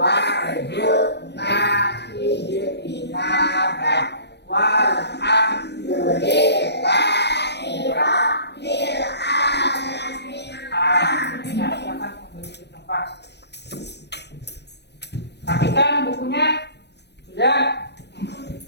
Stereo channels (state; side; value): late; right; 0.49 ms